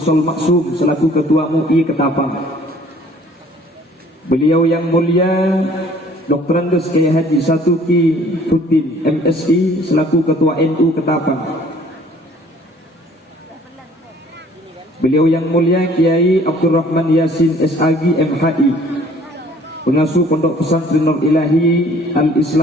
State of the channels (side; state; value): both; normal; correlation 0.55